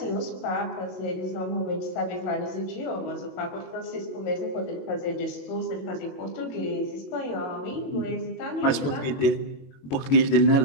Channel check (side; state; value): right; late; 22 ms